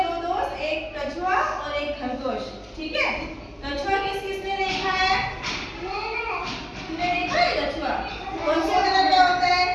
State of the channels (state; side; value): identical; both; correlation 1.00